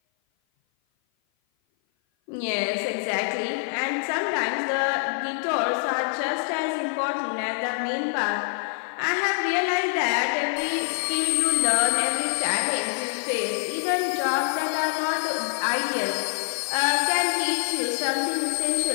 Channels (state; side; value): silent; right; 56 dB below the other